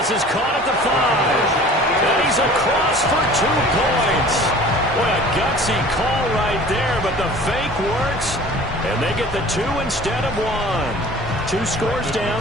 is caught at the 5. And he's across for 2 points. What a gutsy call right there, but the fake works. And they get the 2 instead of 1. 2 scores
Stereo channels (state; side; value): normal; both; correlation 0.45